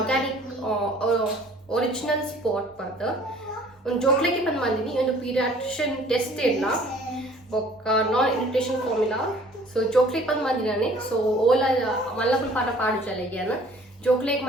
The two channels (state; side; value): normal; both; correlation 0.53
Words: ಒರಿಜಿನಲ್ ಸ್ಪಾಟ್ ಬಂದು ಒಂದು ಜೋಕ್ಲೆಗೆ ಬಂದು ಬಂದಿನಿ ಒಂದು ಪೀರಿಯಾಟ್ರಿಷನ್ ಟೆಸ್ಟ್ ಇಲ್ಲ ಬೊಕ್ಕ ನಾನ್ ಇರಿಟೇಷನ್ ಫಾರ್ಮುಲಾ ಸೊ ಜೋಕ್ಲೇಕ್ ಬಂದು ಮಂದಿನಾನೆ ಸೊ ಓಲಾ ಮಲ್ಲಪುಲ್ ಪಾಠ ಪಾಡು ಚಲೆಗ್ಯಾನ ಜೋಕ್ಲೇಕ್